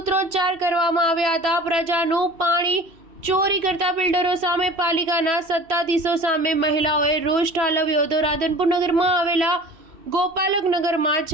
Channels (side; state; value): left; late; 3.0 ms